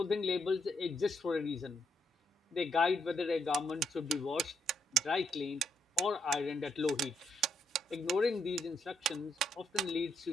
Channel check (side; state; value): both; normal; correlation 0.76